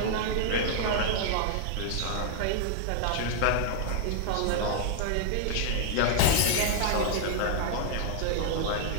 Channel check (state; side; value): different; both; correlation 0.00